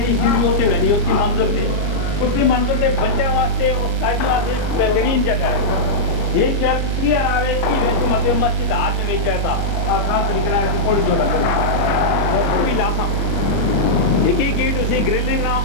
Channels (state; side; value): late; right; 29 ms